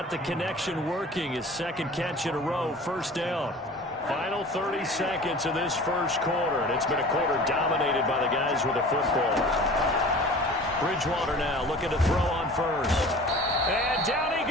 the connection working. His second catch in a row, first down. Final 30 seconds of this first quarter, and it's been a quarter dominated by the guys with the football. Bridgewater now looking to throw on first. And down he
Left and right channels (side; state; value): both; normal; correlation 0.42